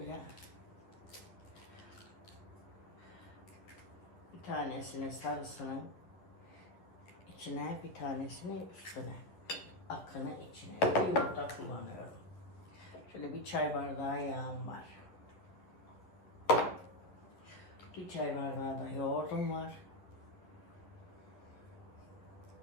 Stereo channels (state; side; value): late; right; 11 ms